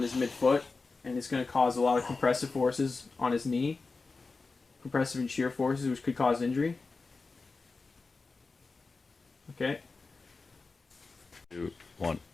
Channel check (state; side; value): quieter; right; 4.0 dB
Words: his midfoot, and it's going to cause a lot of compressive forces on his knee. Compressive and shear forces, which could cause injury. Okay. 2, 1.